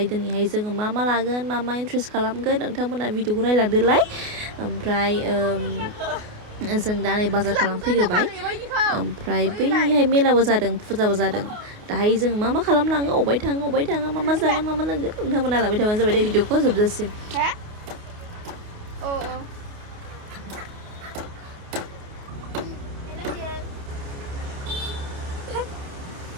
दिनैहाय जोङो मा लागोन मा इन्ट्रेस्ट खालामगोन नोंथांमोना भिडिअखौ नायलांदोलाय ओमफ्राय जों दा नै बाजार खालामफैग्रोबाय ओमफ्राय बैहाय मेलाबो जादों फुजाबो जादों दाहाय जों मा खालामलाङो अबाय थाङा मा जागोन मा लोंगोन नोंथांमोना लाबाय थाबानो जाबाय दे भिडिअखौ जोबजासिम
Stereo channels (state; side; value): late; left; 28 ms